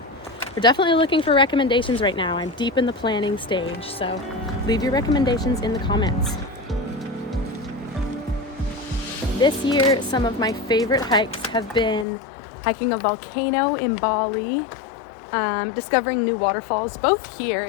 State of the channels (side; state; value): right; drops out; at 12.1 s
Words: we're definitely looking for recommendations right now. I'm deep in the planning stage, so leave your recommendations in the comments. This year, some of my favorite hikes have been hiking a volcano in Bali, discovering new waterfalls both here